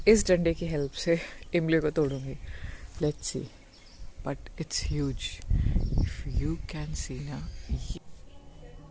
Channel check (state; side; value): identical; both; correlation 1.00